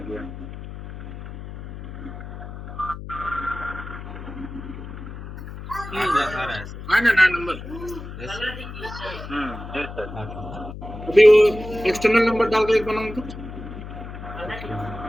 गया। आ रहा है सर। आए ना नया number. Yes sir. Yes sir. आपको अभी वो एक्सटर्नल नंबर डाल के एक बनाऊं तो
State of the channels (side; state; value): left; noise; hum, 11 dB below the sound